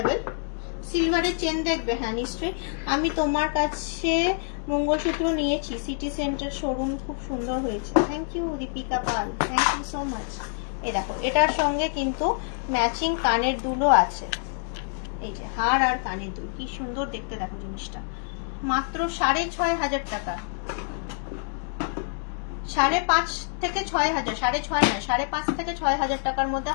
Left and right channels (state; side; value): silent; right; 61 dB below the other